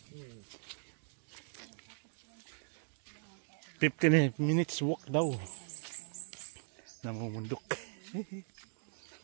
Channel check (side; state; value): left; silent; digital silence